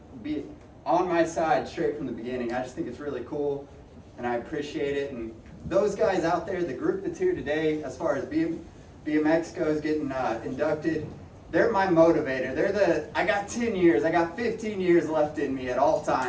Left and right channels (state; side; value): identical; both; correlation 1.00